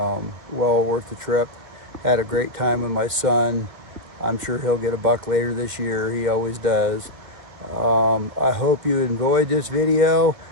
worth the trip. Had a great time with my son. I'm sure he'll get a buck later this year. He always does. I hope you enjoyed this video.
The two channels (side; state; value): left; late; 2.2 ms